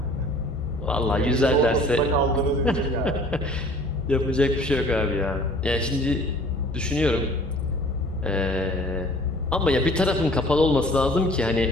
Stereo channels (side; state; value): both; normal; correlation 0.50